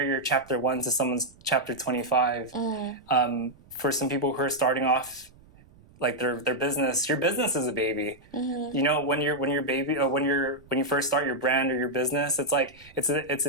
your chapter 1 to someone's chapter 25. For some people who are starting off, like, their business, your business is a baby. You know, when you're baby, or when you first start your brand or your business, it's like it's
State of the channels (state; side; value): noise; right; rumble, 26 dB below the sound